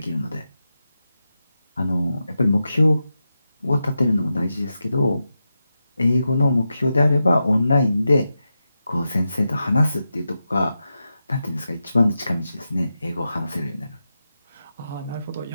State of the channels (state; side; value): inverted; both; correlation -0.89